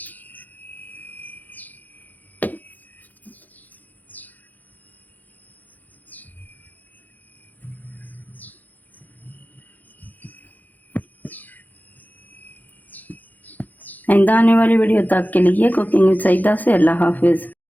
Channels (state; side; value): late; right; 0.083 ms